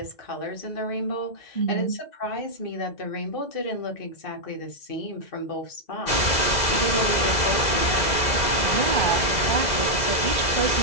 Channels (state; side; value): late; right; 2.0 ms